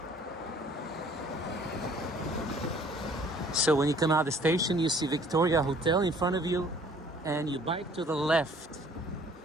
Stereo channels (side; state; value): both; normal; correlation 0.55